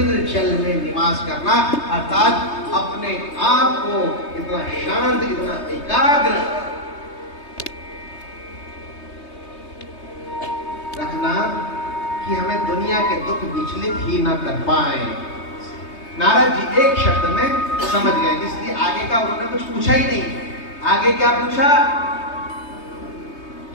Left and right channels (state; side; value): late; right; 3.2 ms